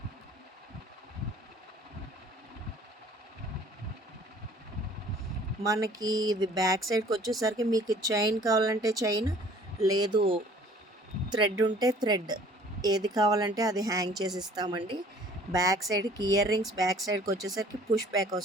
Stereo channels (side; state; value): both; normal; correlation 0.53